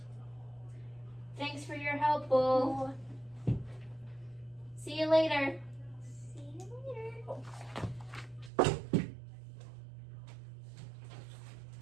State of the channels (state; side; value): drops out; left; at 8.5 s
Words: Thanks for your help, Bull. See you later. See you later.